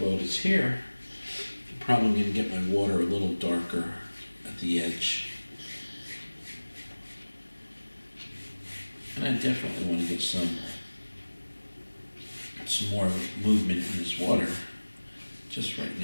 is here, I'm probably going to get my water a little darker at the edge. And I definitely want to get some more movement in this water. Just right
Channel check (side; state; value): both; inverted; correlation -1.00